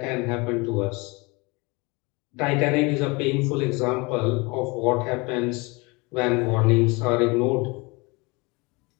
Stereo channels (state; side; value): quieter; right; 26.6 dB